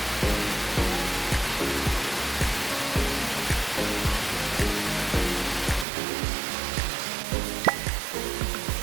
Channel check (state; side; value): drops out; left; at 5.9 s